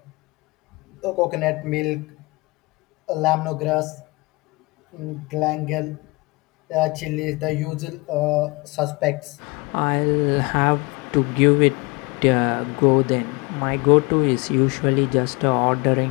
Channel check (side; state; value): right; quieter; 25.6 dB